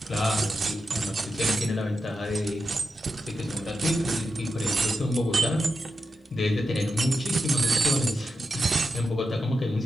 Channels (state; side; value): normal; both; correlation 0.89